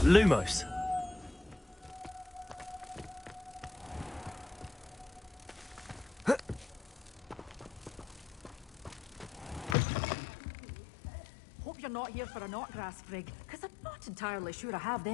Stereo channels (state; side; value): drops out; right; at 9.8 s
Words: Lumos. Hope you're not here for a knotgrass frig, because I'm not entirely sure I have